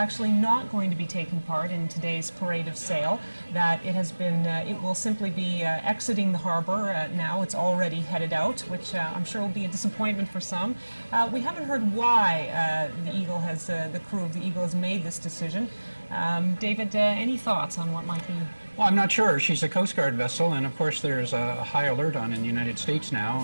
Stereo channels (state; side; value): inverted; both; correlation -1.00